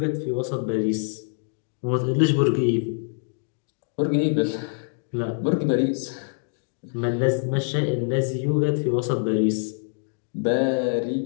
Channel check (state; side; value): silent; right; 62 dB below the other